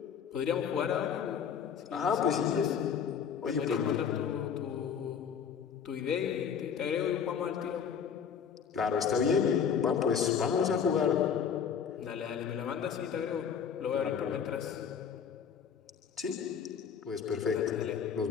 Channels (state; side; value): quieter; right; 7.3 dB